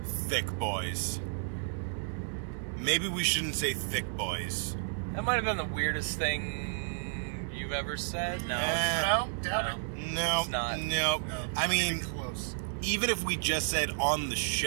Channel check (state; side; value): silent; left; digital silence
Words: thick boys. Maybe we shouldn't say thick boys. That might have been the weirdest thing you've ever said. No. Doubt it. No. It's not. No. I mean, close. Even if we just said on the